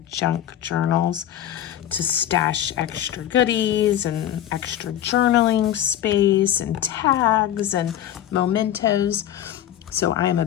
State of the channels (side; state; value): right; quieter; 11.3 dB